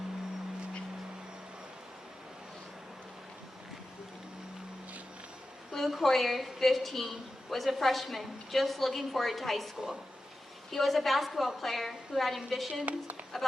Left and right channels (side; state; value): both; normal; correlation 0.93